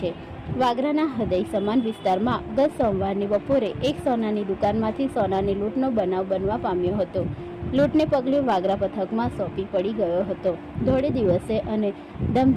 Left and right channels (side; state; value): both; identical; correlation 1.00